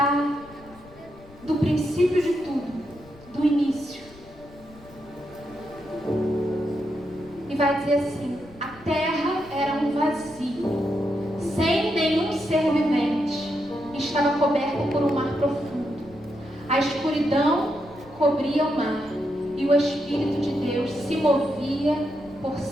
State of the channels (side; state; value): left; noise; rumble, 23 dB below the sound